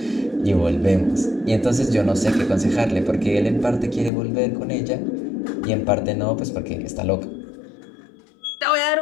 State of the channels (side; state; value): right; drops out; at 4.1 s